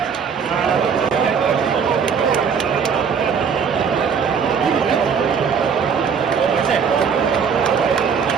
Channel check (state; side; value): quieter; left; 6.4 dB